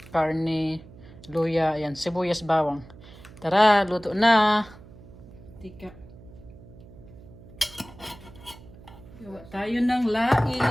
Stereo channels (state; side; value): noise; right; hum, 20 dB below the sound